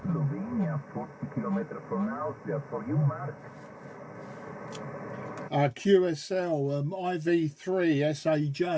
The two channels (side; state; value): both; identical; correlation 1.00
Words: 40 kilometers from Austria. For you, Mark. QSL IV3